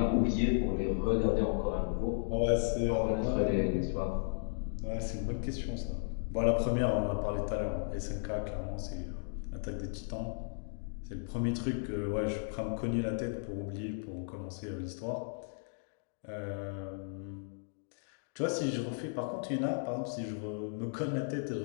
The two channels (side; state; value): right; silent; digital silence